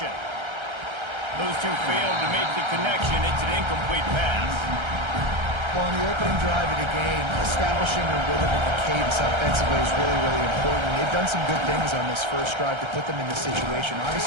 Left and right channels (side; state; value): left; late; 1.3 ms